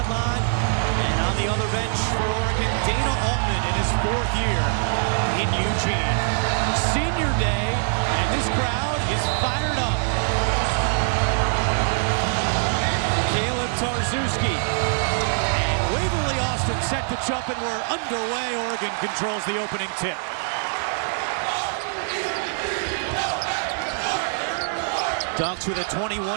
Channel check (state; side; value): silent; left; 63 dB below the other